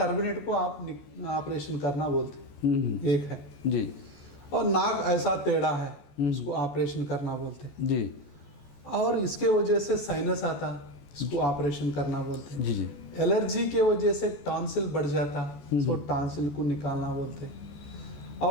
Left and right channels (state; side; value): late; right; 14 ms